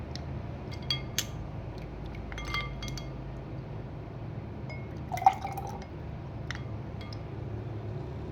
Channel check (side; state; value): both; identical; correlation 1.00